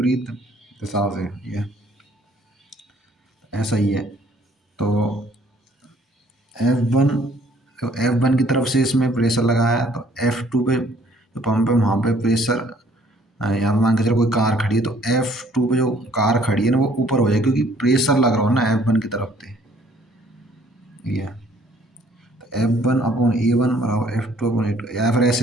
दिशा से, ये ऐसा ही है। तो F1, तो F1 की तरफ से इसमें प्रेशर लगाया है, तो F2 पे जो पंप है वहाँ पे प्रेशर, यहाँ पे मान के चलो कोई कार खड़ी है, तो F2 पे जो कार खड़ी है ना वो ऊपर हो जाए, क्योंकि प्रेशर लग रहा हो ना F1 की तरफ से, ये तो F1/A1 बराबर F2/A2, या फिर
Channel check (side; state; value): both; normal; correlation 0.60